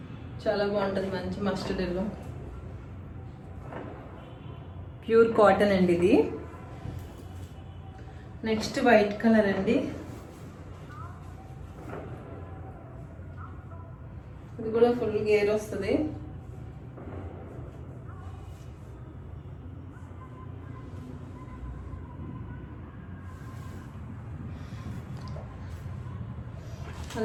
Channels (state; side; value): identical; both; correlation 1.00